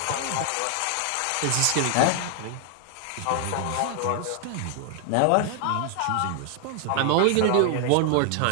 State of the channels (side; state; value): both; different; correlation 0.00